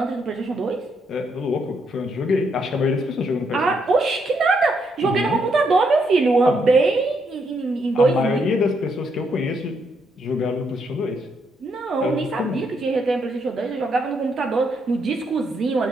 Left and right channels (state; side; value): normal; both; correlation 0.76